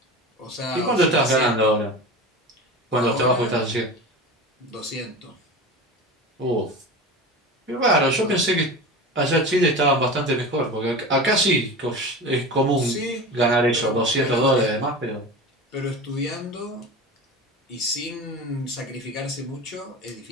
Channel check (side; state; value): both; normal; correlation 0.30